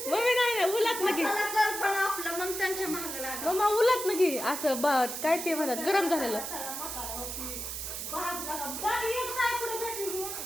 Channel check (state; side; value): noise; right; hiss, 5 dB below the sound